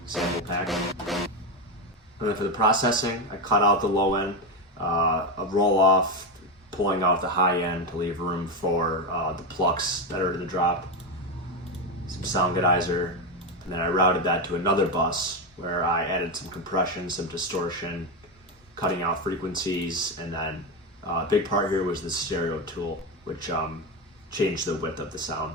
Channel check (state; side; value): normal; both; correlation 0.11